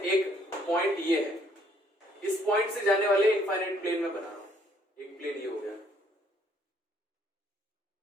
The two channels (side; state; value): both; normal; correlation 0.65